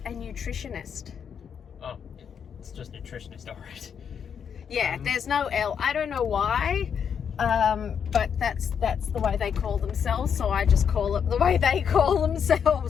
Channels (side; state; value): right; quieter; 7.4 dB